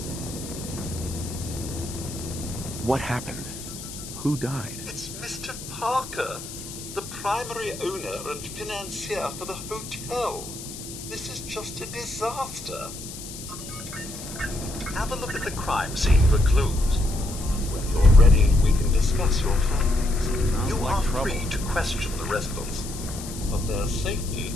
What happened? Who died? It's Mr. Parker, the primary owner and financier for the hotel. This is just a disaster. Have a look at the crime scene for clues. When you're ready, we can discuss your findings. You are free to question the residents, but their safety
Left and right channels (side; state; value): left; noise; hiss, 11 dB below the sound